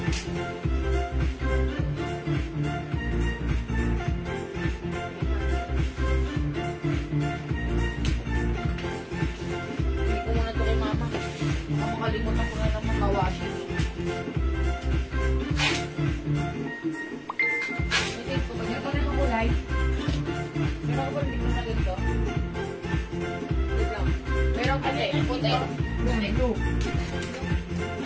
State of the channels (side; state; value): both; identical; correlation 1.00